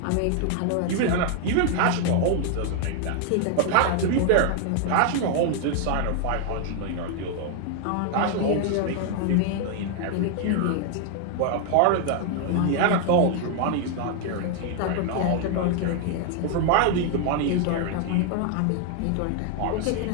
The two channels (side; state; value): both; different; correlation 0.00